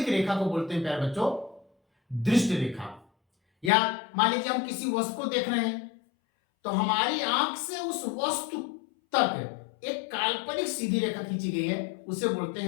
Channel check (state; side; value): drops out; right; at 3.7 s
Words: रेखा को बोलते हैं प्यारे बच्चों दृष्टि रेखा। या मान लीजिए हम किसी वस्तु को देख रहे हैं, तो हमारी आंख से उस वस्तु तक एक काल्पनिक सीधी रेखा खींची गई है, उसे बोलते